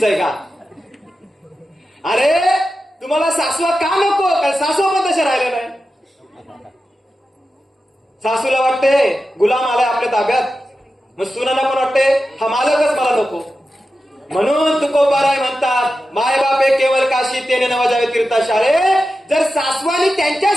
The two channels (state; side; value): normal; both; correlation 0.92